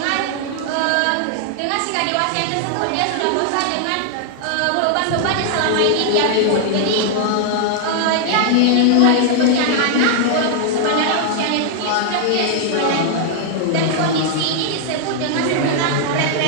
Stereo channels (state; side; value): different; both; correlation 0.00